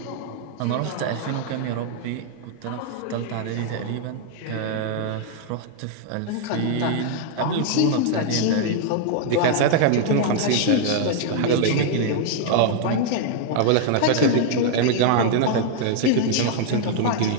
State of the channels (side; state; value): both; different; correlation 0.00